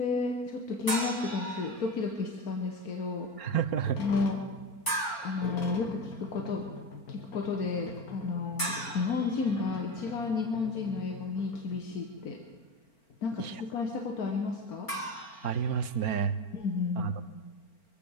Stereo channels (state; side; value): late; right; 4.4 ms